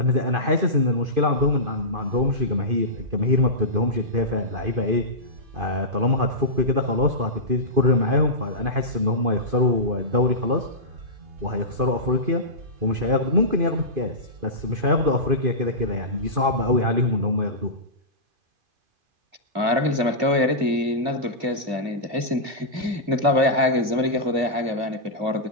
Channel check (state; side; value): late; left; 2.5 ms